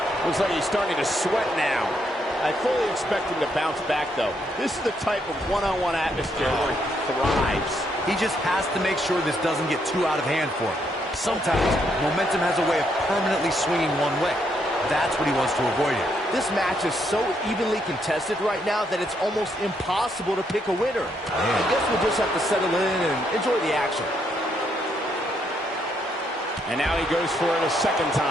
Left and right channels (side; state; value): both; normal; correlation 0.75